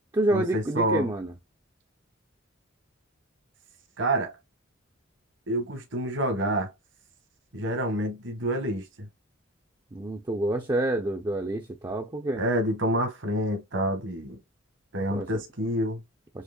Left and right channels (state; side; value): normal; both; correlation 0.30